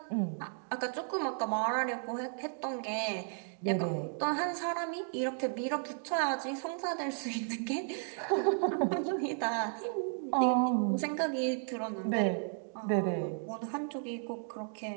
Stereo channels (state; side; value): silent; left; 55 dB below the other